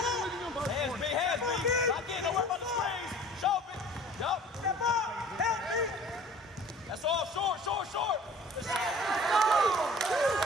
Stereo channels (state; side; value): normal; both; correlation 0.47